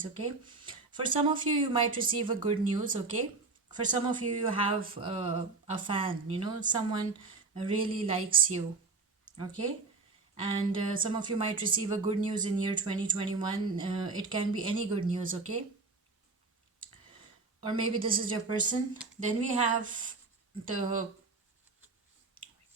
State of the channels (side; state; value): left; quieter; 4.0 dB